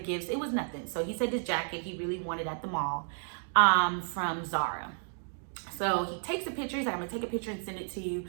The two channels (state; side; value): silent; left; 56 dB below the other